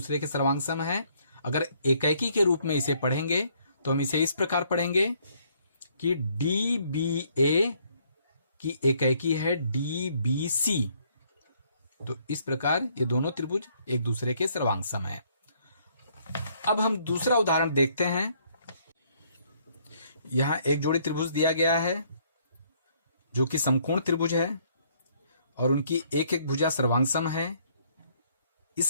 के सर्वांग सम है। अगर एकैकी के रूप में इसे पढ़ेंगे तो हम इसे इस प्रकार पढ़ेंगे कि डी बी ए की एकैकी है डी बी सी। तो इस प्रकार ये दोनों त्रिभुज एक दूसरे के सर्वांग सम है। अब हम दूसरा उदाहरण देखते हैं। यहां एक जोड़ी त्रिभुज दिया गया है जो कि समकोण त्रिभुज है और उनकी एक एक भुजा सर्वांग सम है,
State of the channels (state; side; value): inverted; both; correlation -0.66